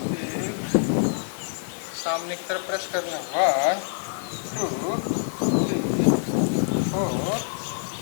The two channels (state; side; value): silent; right; digital silence